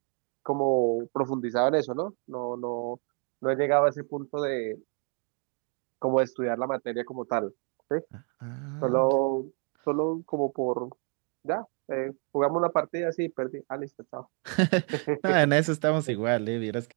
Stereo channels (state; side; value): quieter; left; 39.7 dB